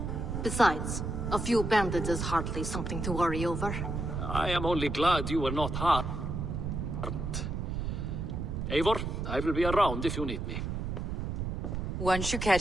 Besides, a few bandits is hardly something to worry over. I am only glad you were not harmed. Eivor, I will be around if you need me. Once you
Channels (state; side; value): noise; right; rumble, 3 dB below the sound